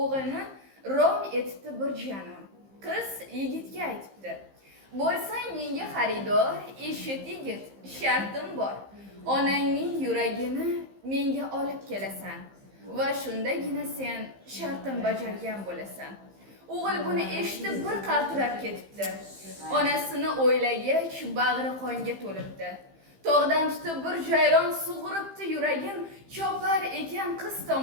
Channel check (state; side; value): late; left; 15 ms